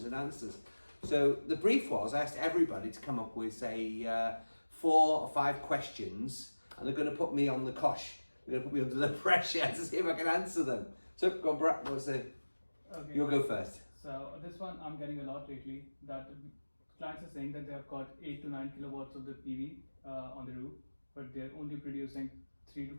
and answers. So the brief was I asked everybody to come up with say 4 or 5 questions, and they're going to put me on the cosh. They're going to put me under the pressure to see if I can answer them. So go on, Brad. What's the? Okay. You'll go first. So this one I'm getting a lot lately, that clients are saying that they have got 8 to 9 kilowatts of the PV on the roof, but they're only producing 3 to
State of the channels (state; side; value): inverted; both; correlation -1.00